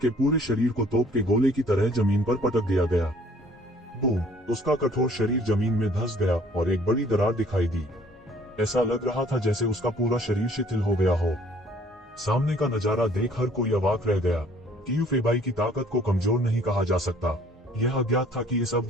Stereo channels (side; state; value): both; normal; correlation 0.57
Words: पूरे शरीर को तोप के गोले की तरह जमीन पर पटक दिया गया। बूम! उसका कठोर शरीर जमीन में धंस गया और एक बड़ी दरार दिखाई दी। ऐसा लग रहा था जैसे उसका पूरा शरीर शिथिल हो गया हो। सामने का नजारा देख हर कोई अवाक रह गया। क्यूफीबाई की ताकत को कमजोर नहीं कहा जा सकता। यह अज्ञात था कि इस